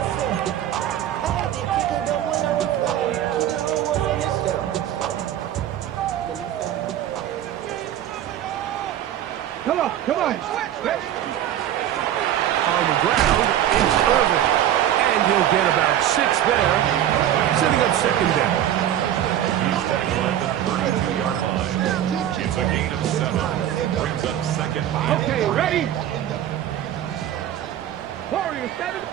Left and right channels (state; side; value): quieter; left; 11.4 dB